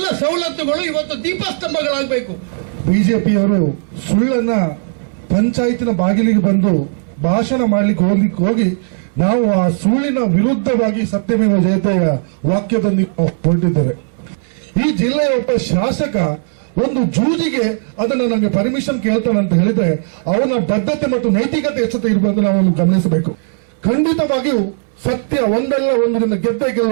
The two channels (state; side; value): silent; left; 69 dB below the other